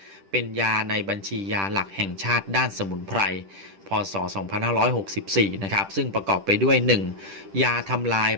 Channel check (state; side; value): late; left; 10 ms